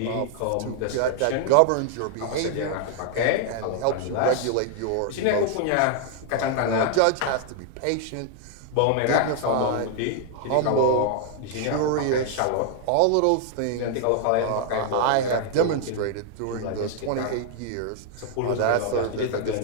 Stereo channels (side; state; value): both; different; correlation 0.00